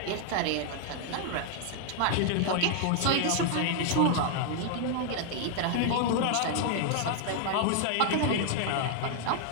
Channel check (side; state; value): both; different; correlation 0.00